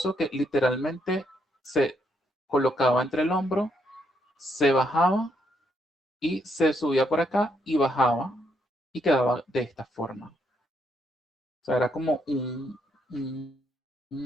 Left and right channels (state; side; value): normal; both; correlation 0.75